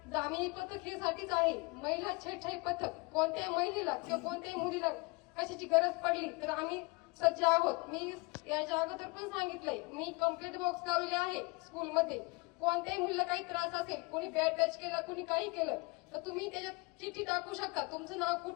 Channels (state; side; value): quieter; right; 27.5 dB